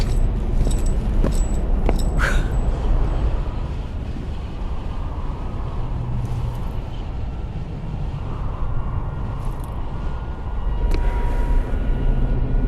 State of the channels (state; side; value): identical; both; correlation 1.00